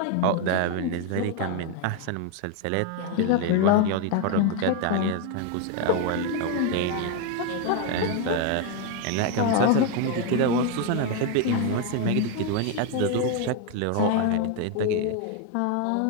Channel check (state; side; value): different; both; correlation 0.01